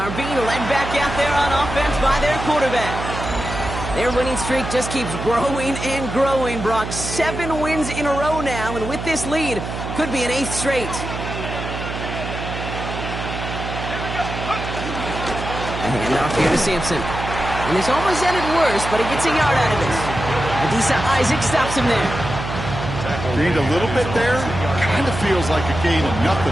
being led back out there on offense by their quarterback. Their winning streak just keeps growing and growing, Brock. 7 wins in a row now, and with this lead, could be an 8th straight. A handoff here to Sampson. And this almost ended worse, but he gets a yard out of this. Adisa Isaac stops him there. Gained a little bit there. Kind of feels like a gain of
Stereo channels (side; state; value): right; noise; hum, 6 dB below the sound